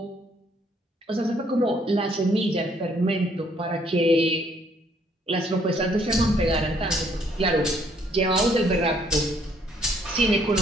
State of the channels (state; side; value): normal; both; correlation 0.66